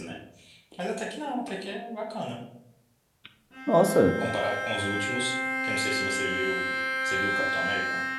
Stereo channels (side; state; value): both; identical; correlation 1.00